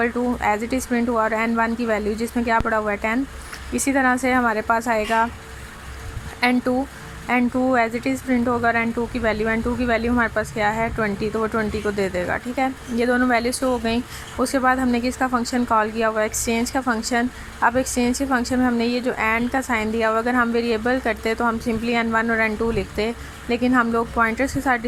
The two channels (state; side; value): identical; both; correlation 1.00